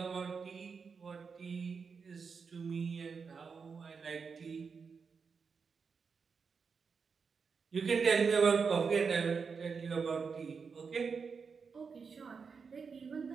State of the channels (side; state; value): left; quieter; 5.5 dB